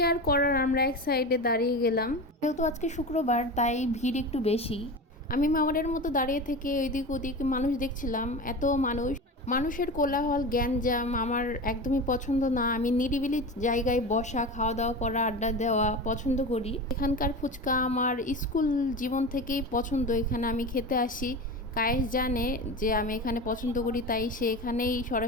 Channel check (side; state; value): both; normal; correlation 0.28